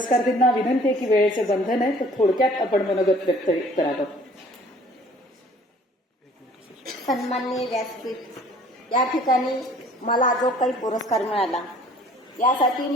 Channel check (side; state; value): both; normal; correlation 0.54